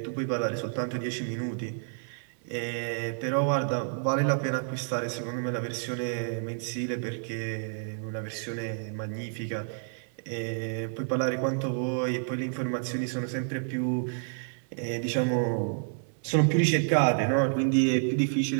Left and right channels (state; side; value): silent; left; digital silence